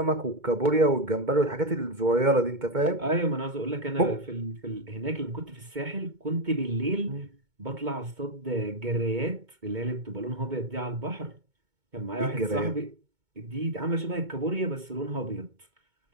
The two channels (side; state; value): left; late; 2.2 ms